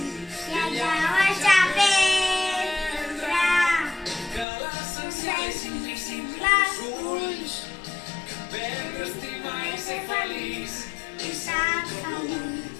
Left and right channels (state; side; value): drops out; right; at 4.5 s